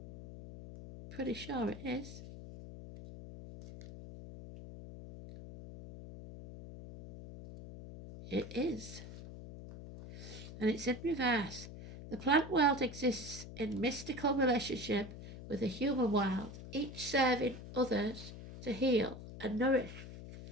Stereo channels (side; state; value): left; noise; hum, 12 dB below the sound